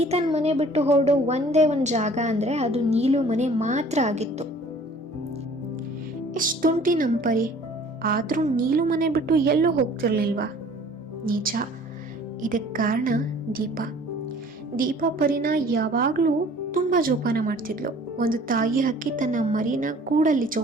ತನ್ನ ಮನೆ ಬಿಟ್ಟು ಹೊರಡೋ ಒಂದೇ ಒಂದು ಜಾಗ ಅಂದರೆ ಅದು ನೀಲು ಮನೆ ಮಾತ್ರ ಆಗಿತ್ತು. ಎಷ್ಟು ತುಂಟಿ ನಮ್ಮ ಪರಿ, ಆದರೂ ನೀಲು ಮನೆ ಬಿಟ್ಟು ಎಲ್ಲೂ ಹೋಗ್ತಿರ್ಲಿಲ್ವಾ? ನಿಜ, ಇದಕ್ಕೆ ಕಾರಣ ದೀಪ ಪರಿನ ಯಾವಾಗಲೂ ತುಂಬ ಜೋಪಾನ ಮಾಡ್ತಿದ್ಲು. ಒಂದು ತಾಯಿ ಹಕ್ಕಿ ತನ್ನ ಮರಿನ ಕೂಡಲ್ಲಿ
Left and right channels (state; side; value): normal; both; correlation 0.52